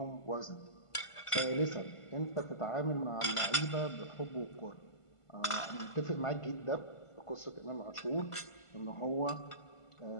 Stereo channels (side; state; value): right; late; 1.5 ms